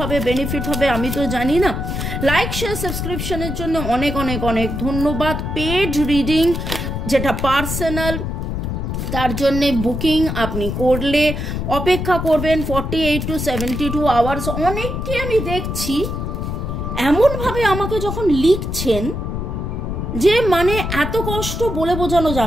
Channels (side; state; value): left; noise; rumble, 4 dB below the sound